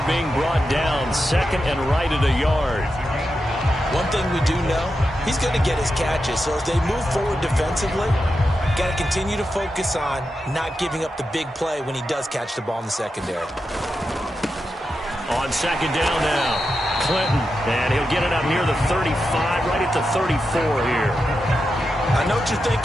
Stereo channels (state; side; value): normal; both; correlation 0.88